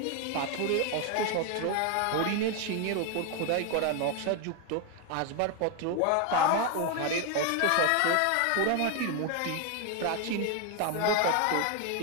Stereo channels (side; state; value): both; different; correlation 0.01